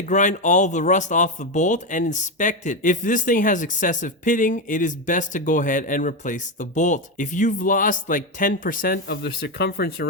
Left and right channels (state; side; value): normal; both; correlation 0.10